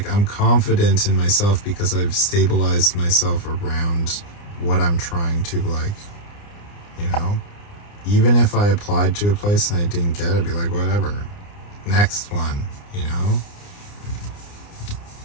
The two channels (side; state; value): right; late; 29 ms